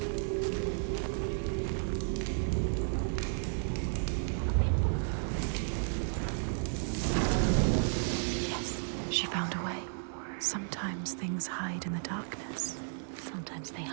Yes, she found a way. Sometimes things hide in the darkness. Sometimes they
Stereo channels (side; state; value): left; silent; digital silence